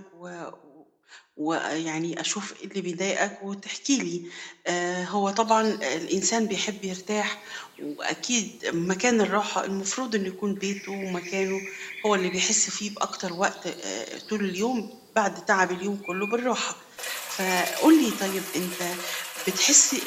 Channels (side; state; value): both; identical; correlation 1.00